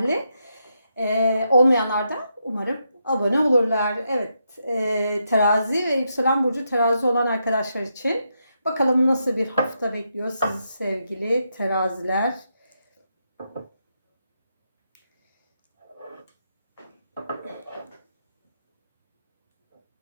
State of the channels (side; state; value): both; inverted; correlation -0.82